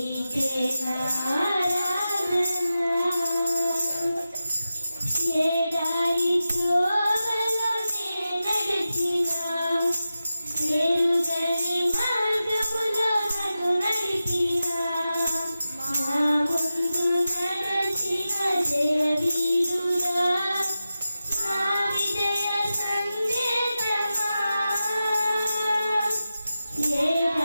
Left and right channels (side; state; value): both; inverted; correlation -0.93